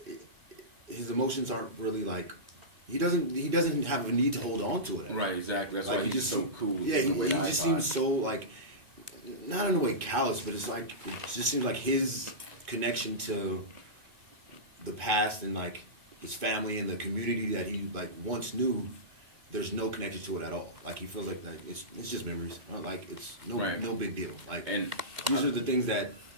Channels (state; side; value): late; left; 2.2 ms